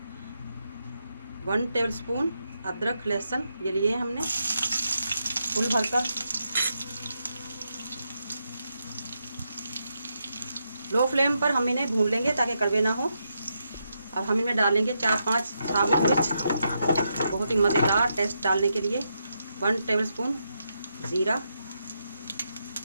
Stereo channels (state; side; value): inverted; both; correlation -0.83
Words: 1 टेबलस्पून अदरक लहसुन ये लिए हमने फुल भरकर। लो फ्लेम पर हम इन्हें भून लेंगे ताकि कड़वे ना हो। अब हम इनमें डालेंगे 4-5 साबुत मिर्च, बहुत ही मज़ेदार टेस्ट डालने के लिए। 1 टेबलस्पून ज़ीरा,